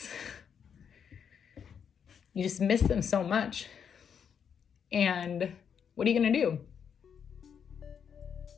You just miss them so much. And what are you going to do?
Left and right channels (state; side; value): quieter; right; 7.5 dB